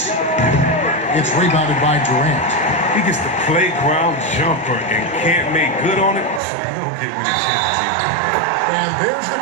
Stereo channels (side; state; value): left; drops out; at 6.4 s